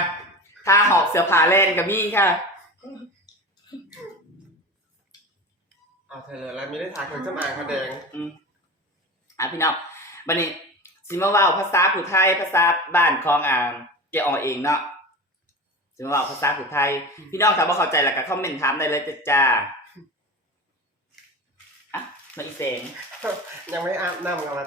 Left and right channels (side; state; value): both; normal; correlation 0.30